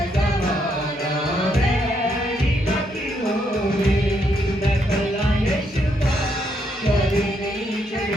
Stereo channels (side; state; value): both; normal; correlation 0.76